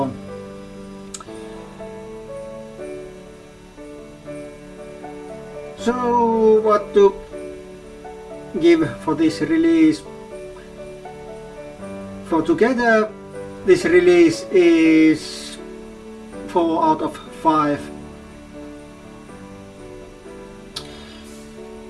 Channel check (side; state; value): both; identical; correlation 1.00